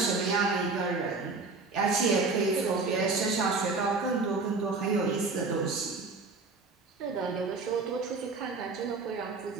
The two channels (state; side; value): quieter; left; 4.0 dB